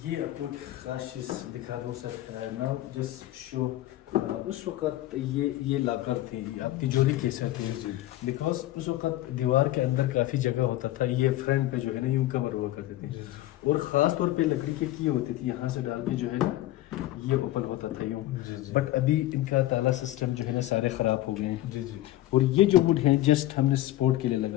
ये आपको खास चीज़ दिखा दूँ सर, नाउ जस्ट शो। उस वक़्त ये लाकर थी, आप तिजोरी कह सकते हैं, बिकॉज उस वक़्त दीवार के अंदर काफ़ी जगह होता था, ये फ्रंट पे जो है ना यूँ कवर हुआ करते थे, और ख़ास तौर पे लकड़ी के की होती थी, यहाँ से डाल के जो है ना ये ओपन होता था यूँ। बट अभी इनका ताला सिस्टम जो है ना सारे ख़राब हो गए हैं। और ये जो वुड है जस्ट हमने सपोर्ट के लिए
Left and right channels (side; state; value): right; quieter; 15.5 dB